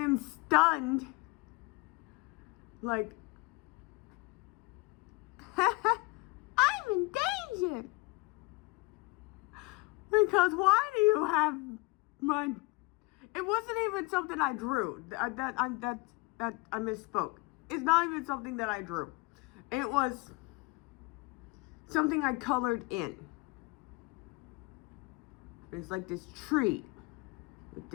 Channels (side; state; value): right; quieter; 24.8 dB